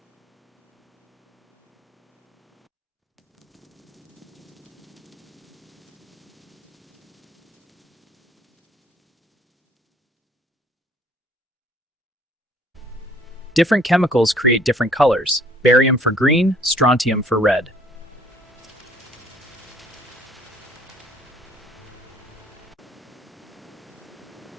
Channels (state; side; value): normal; both; correlation 0.58